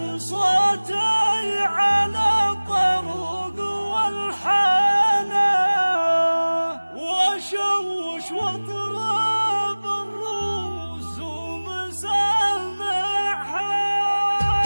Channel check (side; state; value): both; inverted; correlation -1.00